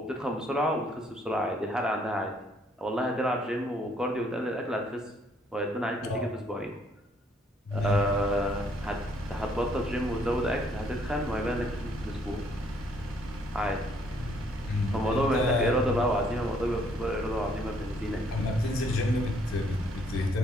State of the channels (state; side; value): normal; both; correlation 0.66